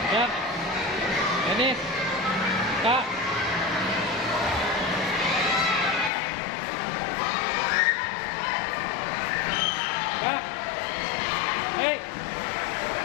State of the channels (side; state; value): right; drops out; at 6.1 s